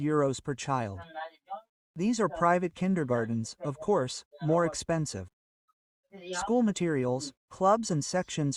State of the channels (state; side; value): identical; both; correlation 1.00